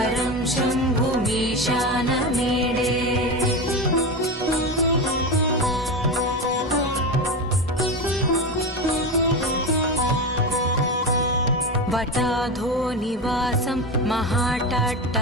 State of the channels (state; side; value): normal; both; correlation 0.20